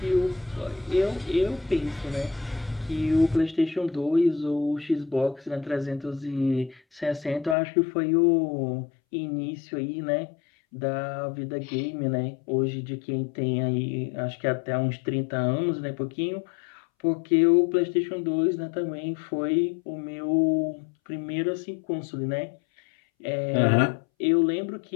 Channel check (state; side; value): drops out; right; at 7.6 s